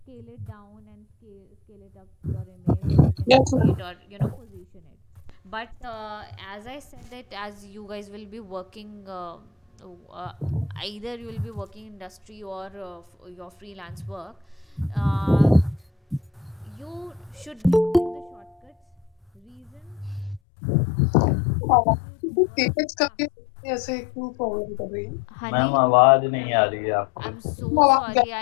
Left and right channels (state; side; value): drops out; right; at 20.4 s